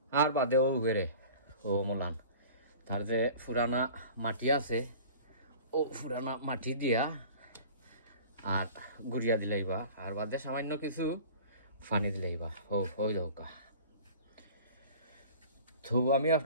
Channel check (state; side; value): inverted; both; correlation -0.42